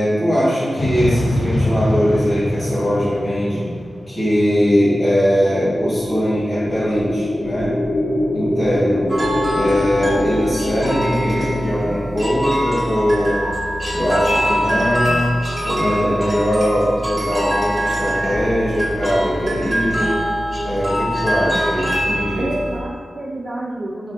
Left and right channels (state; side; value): normal; both; correlation 0.94